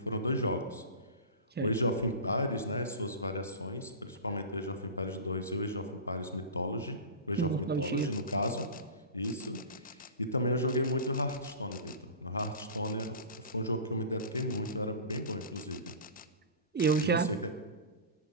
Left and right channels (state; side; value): inverted; both; correlation -0.32